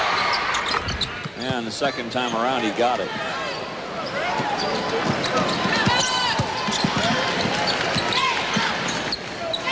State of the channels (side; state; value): both; identical; correlation 1.00